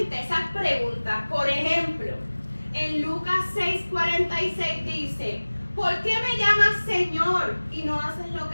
esas preguntas. Por ejemplo, en Lucas 6:46 dice, ¿por qué me llamas Señor y no haces lo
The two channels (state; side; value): inverted; both; correlation -1.00